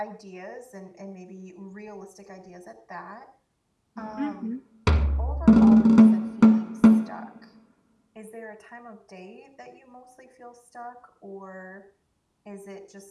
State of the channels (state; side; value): identical; both; correlation 1.00